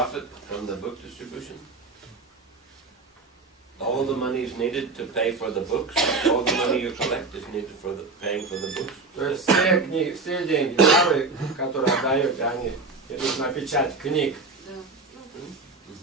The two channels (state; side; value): quieter; left; 3.8 dB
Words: from the book distribution? All the money is needed to pay for the books. All the money you collect is needed for paying for the books. То есть все деньги, которые отдаете, они идут на печать книг.